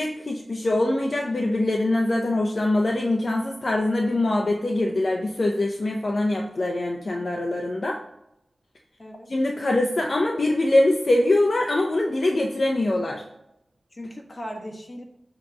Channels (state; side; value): normal; both; correlation 0.96